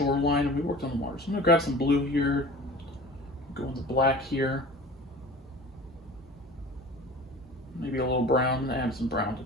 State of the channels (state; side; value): normal; both; correlation 0.40